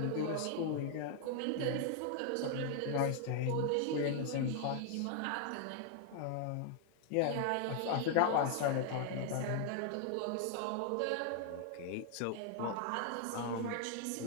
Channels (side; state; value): both; different; correlation 0.00